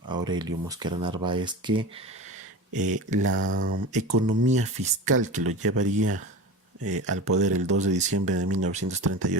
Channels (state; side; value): normal; both; correlation 0.30